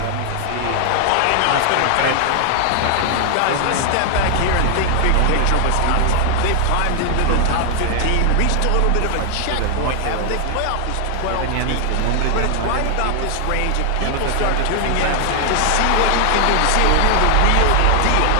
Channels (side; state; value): both; different; correlation 0.00